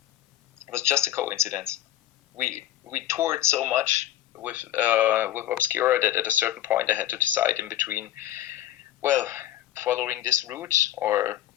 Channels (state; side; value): quieter; right; 13.0 dB